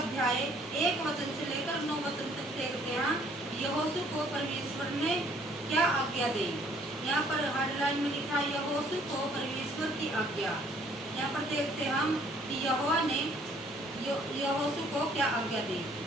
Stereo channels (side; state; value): both; normal; correlation 0.61